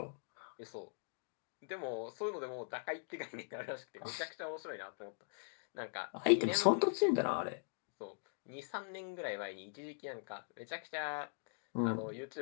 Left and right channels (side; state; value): right; silent; digital silence